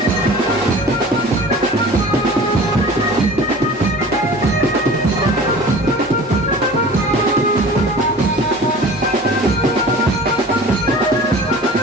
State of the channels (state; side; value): normal; both; correlation 0.42